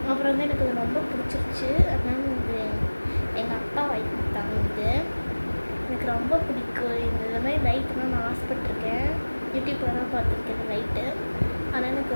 அப்புறம் வந்து எனக்கு இது ரொம்ப பிடிச்சிருச்சு. அதனால இது எங்கள் அப்பா வாங்கி கொடுத்தாங்க. இது எனக்கு ரொம்ப பிடிக்கும். இந்த மாதிரி லைட்டுலாம் நான் ஆசைப்பட்டிருக்கேன். யூடியூப்பில் தான் பார்த்துருக்கேன் இந்த லைட்டு. ஆனால் எனக்கு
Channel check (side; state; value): both; inverted; correlation -1.00